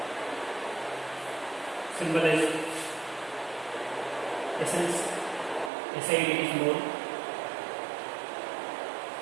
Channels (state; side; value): drops out; left; at 5.7 s